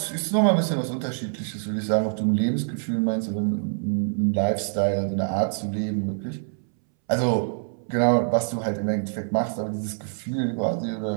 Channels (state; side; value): silent; left; 62 dB below the other